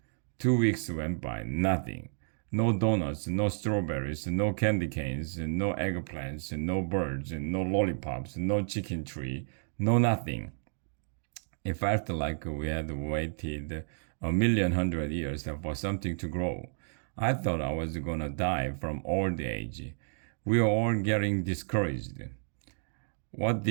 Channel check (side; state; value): left; silent; digital silence